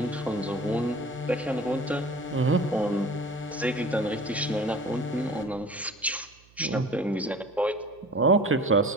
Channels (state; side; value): noise; right; hum, 28 dB below the sound